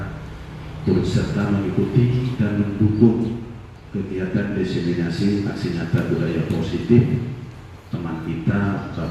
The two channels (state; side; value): identical; both; correlation 1.00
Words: turut serta mengikuti dan mendukung kegiatan diseminasi aksi nyata budaya positif teman kita